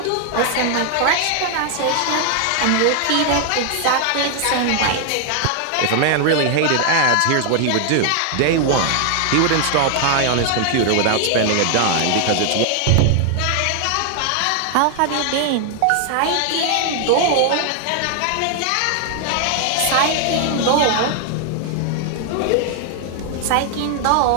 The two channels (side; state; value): both; different; correlation 0.00